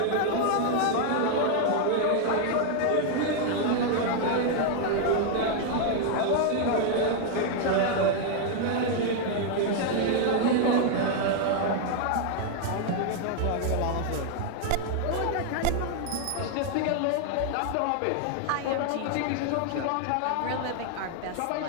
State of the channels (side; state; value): both; different; correlation 0.00